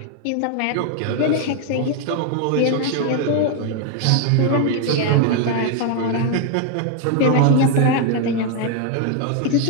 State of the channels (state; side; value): different; both; correlation 0.00